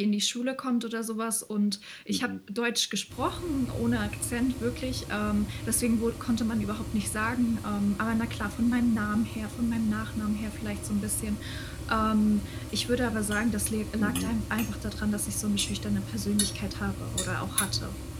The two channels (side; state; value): both; identical; correlation 1.00